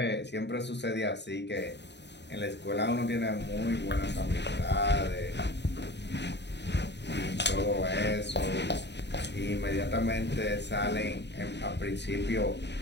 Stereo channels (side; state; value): right; late; 0.50 ms